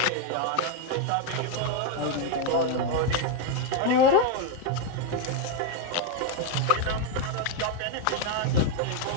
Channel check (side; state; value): both; different; correlation 0.01